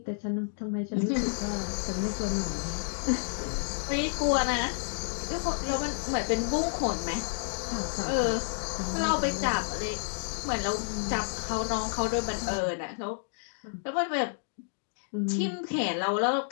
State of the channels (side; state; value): right; silent; digital silence